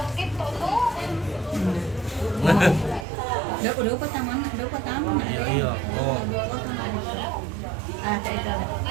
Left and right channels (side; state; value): left; drops out; at 3.1 s